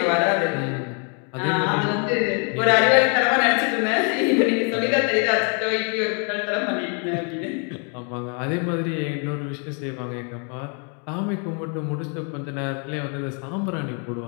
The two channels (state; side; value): quieter; right; 38.6 dB